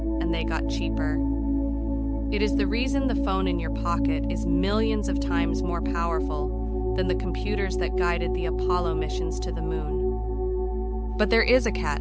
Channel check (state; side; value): identical; both; correlation 1.00